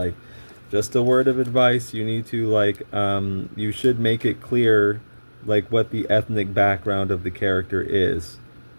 just a word of advice: you need to you should make it clear, like, what the ethnic background of the character is.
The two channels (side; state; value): both; inverted; correlation -1.00